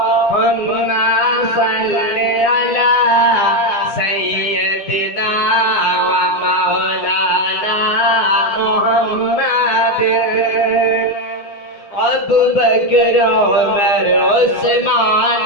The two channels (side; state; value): right; late; 9.8 ms